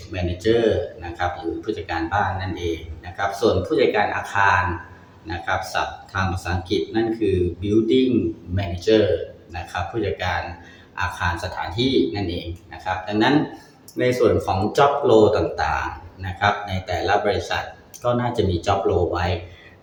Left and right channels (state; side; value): identical; both; correlation 1.00